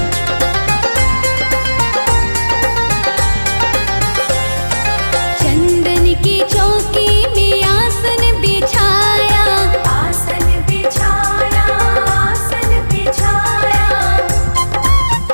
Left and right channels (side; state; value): both; inverted; correlation -1.00